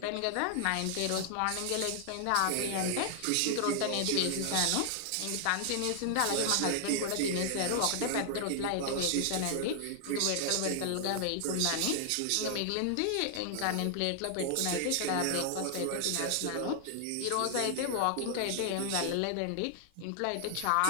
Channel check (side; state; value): both; different; correlation 0.00